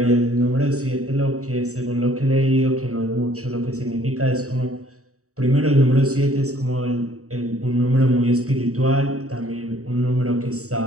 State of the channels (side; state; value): left; late; 0.65 ms